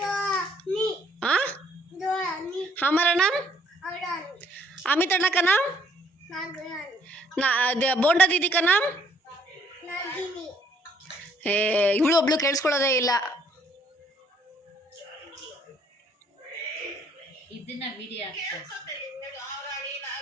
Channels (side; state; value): both; normal; correlation 0.64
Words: हाँ हमारा नाम अमित अण्णा का नाम बोंडा दीदी का नाम ಇವಳು ಒಬ್ಳು ಕೇಳಿಸ್ಕೊಳ್ಳೋದೇ ಇಲ್ಲ. ಇದನ್ನ ವಿಡಿಯೋ